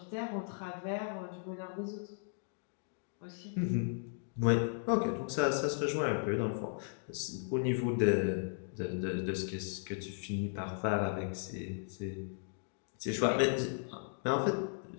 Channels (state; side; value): silent; right; digital silence